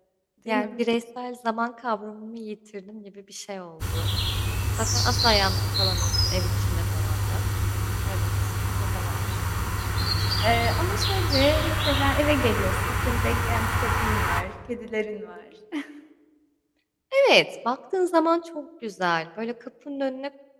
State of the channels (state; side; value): identical; both; correlation 1.00